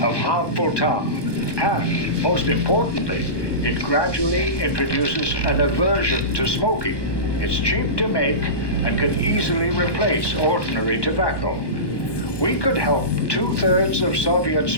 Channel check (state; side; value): late; right; 1.2 ms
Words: of harmful tar. And, most importantly, it gradually introduces an aversion to smoking. It's cheap to make and can easily replace ordinary tobacco. We could help 2/3 of Soviet